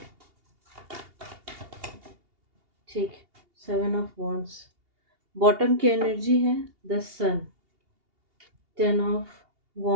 ठीक, 7 ऑफ वॉन्ड्स। बॉटम की एनर्जी है the sun, 10 of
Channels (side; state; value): left; late; 2.8 ms